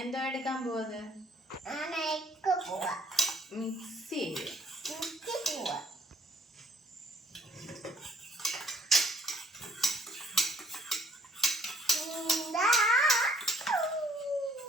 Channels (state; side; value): normal; both; correlation 0.62